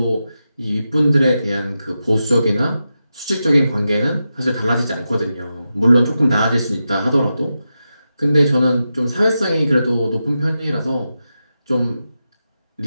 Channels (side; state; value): both; inverted; correlation -0.90